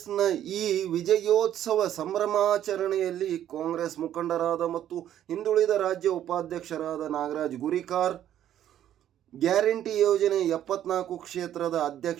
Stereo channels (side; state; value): left; quieter; 11.2 dB